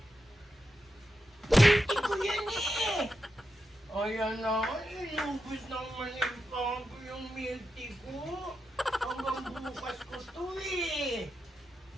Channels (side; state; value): both; normal; correlation 0.87